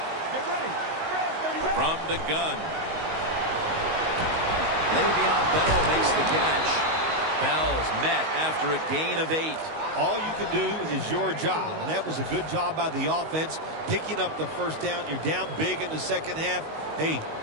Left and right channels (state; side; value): late; left; 19 ms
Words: Get ready. From the gun. Le'Veon Bell makes the catch. Bell's met after a gain of 8. All you can do is your job, and that was a good job by the offense, picking up the first down. You're down big in the second half. Hey,